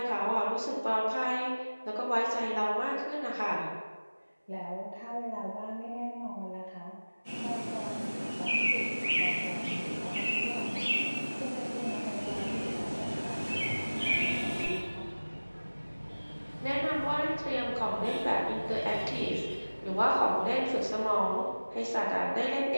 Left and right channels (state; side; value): inverted; both; correlation -1.00